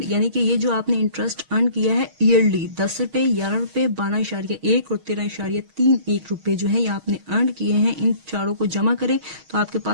यानी कि ये जो आपने इंटरेस्ट अर्न किया है ईयरली 10 रुपये 11 रुपये 12.1 और 13.31 रुपये जो है ये आपने अर्न किए हैं, इन चारों को जमा करें तो आपके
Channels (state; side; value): late; left; 6.4 ms